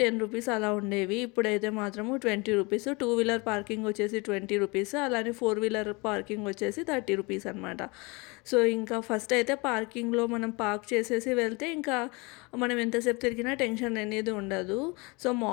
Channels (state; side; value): quieter; right; 27.2 dB